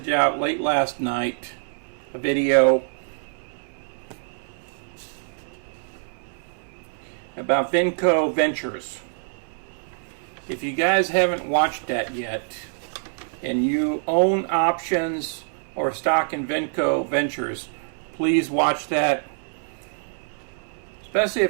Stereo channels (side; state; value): left; silent; 61 dB below the other